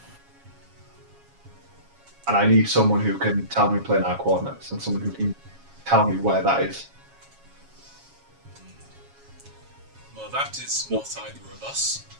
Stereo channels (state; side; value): late; left; 7.3 ms